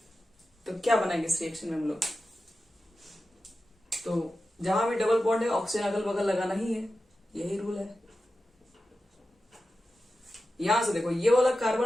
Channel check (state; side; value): normal; both; correlation 0.93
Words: तो क्या बनाएंगे इस रिएक्शन में हम लोग? तो जहां भी डबल बॉन्ड है ऑक्सीजन अगल बगल लगाना ही है, यही रूल है। यहां से देखो, ये वाला